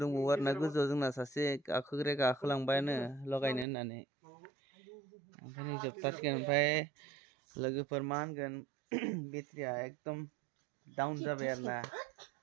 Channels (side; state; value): left; drops out; at 3.7 s